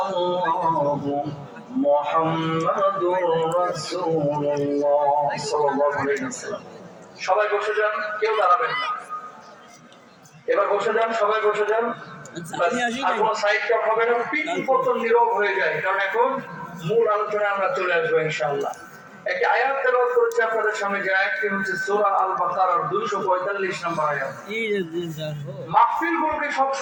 মুহাম্মাদুর রাসূলুল্লাহ সাল্লাল্লাহু আলাইহি ওয়াসাল্লাম। সবাই বসে যান, কেউ দাঁড়াবেন না। এবার বসে যান, সবাই বসে যান। আর কোনো সাইড কাট হবে না, পিন পতন নীরব হয়ে যায়, কারণ এখন মূল আলোচনায় আমরা চলে আসবো ইনশাআল্লাহ। একটি আয়াত তেলাওয়াত করেছি আপনাদের সামনে, যে আয়াতটি হচ্ছে সূরা আল বাকারার 245 নম্বর আয়াত। মাহফিলগুলোকে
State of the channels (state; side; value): identical; both; correlation 1.00